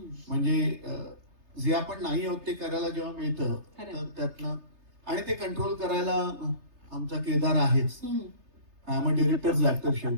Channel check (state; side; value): late; left; 3.3 ms